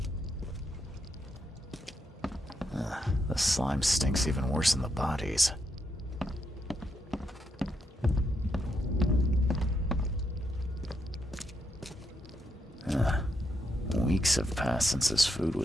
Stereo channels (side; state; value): both; normal; correlation 0.80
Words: The slime stinks even worse than the bodies. Weeks have passed since this food